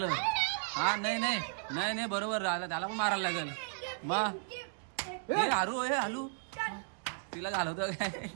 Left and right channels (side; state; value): left; silent; digital silence